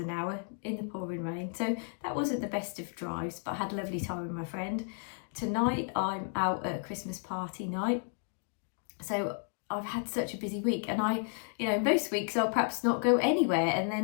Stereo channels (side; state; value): right; silent; 55 dB below the other